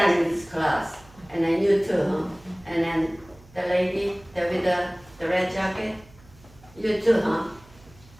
in this class, and then you too, huh? And then the lady with the red jacket, you too, huh?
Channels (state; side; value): noise; right; hum, 25 dB below the sound